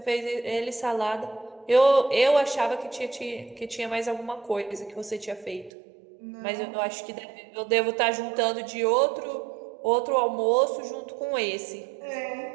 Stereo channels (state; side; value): drops out; left; at 5.7 s